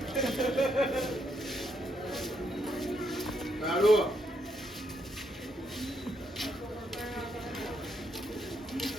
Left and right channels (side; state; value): both; normal; correlation 0.76